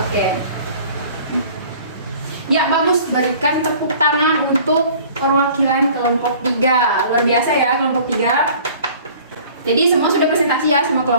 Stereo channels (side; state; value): both; inverted; correlation -0.49